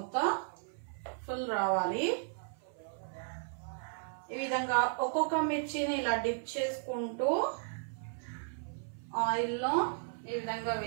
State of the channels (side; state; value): left; silent; 54 dB below the other